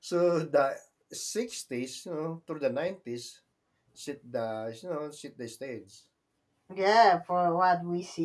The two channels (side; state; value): both; identical; correlation 1.00